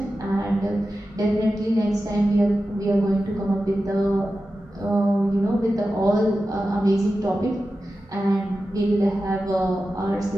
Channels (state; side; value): normal; both; correlation 0.93